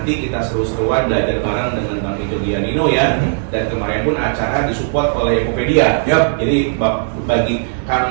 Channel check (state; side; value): silent; left; 68 dB below the other